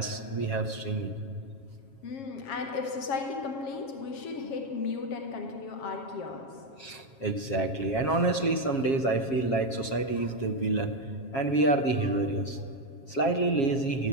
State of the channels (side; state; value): right; late; 7.3 ms